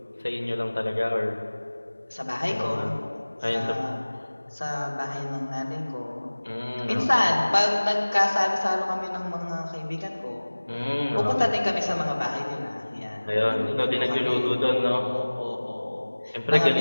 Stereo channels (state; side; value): inverted; both; correlation -1.00